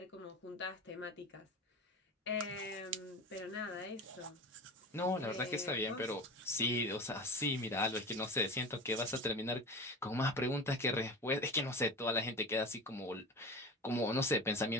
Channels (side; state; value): both; normal; correlation 0.31